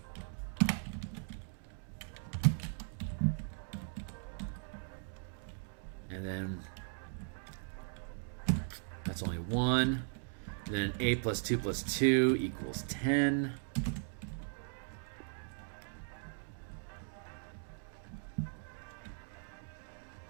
And then that's only 1. And then 8 plus 2 plus 2 equals 10.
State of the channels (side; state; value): left; silent; 52 dB below the other